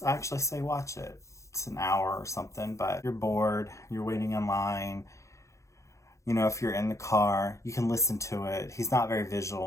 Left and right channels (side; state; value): right; late; 0.15 ms